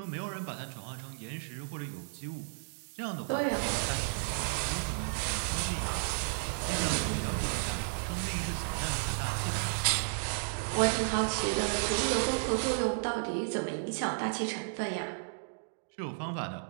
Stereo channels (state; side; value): silent; left; digital silence